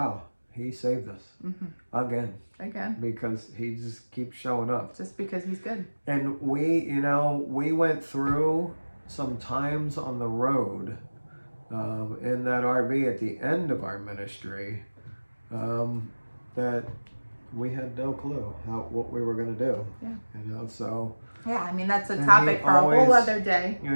He saved us again. Because He just keeps showing up. Just because He's good. And we went through some times on the road in that RV at the end of our ministry that we had no clue what we were going to do. Yeah. So. Yeah, I mean, that's a topic for a whole other day.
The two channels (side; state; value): both; inverted; correlation -1.00